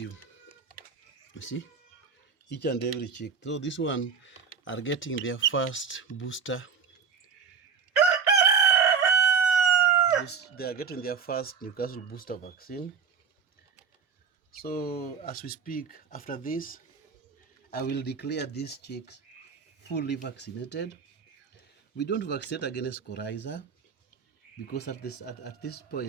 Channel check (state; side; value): quieter; left; 6.2 dB